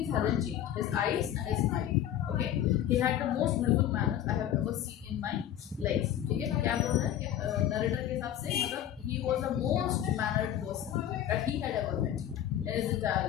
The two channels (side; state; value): right; quieter; 11.2 dB